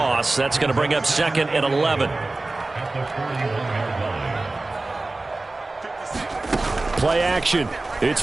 That's going to bring up 2nd and 11. Play action. It's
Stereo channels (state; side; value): quieter; left; 3.1 dB